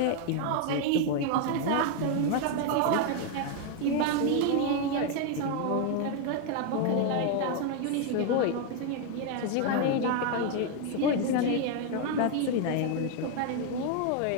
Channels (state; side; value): different; both; correlation 0.01